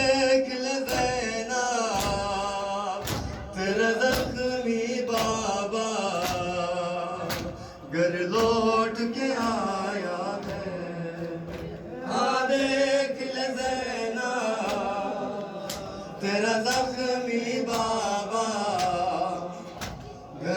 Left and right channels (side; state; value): both; identical; correlation 1.00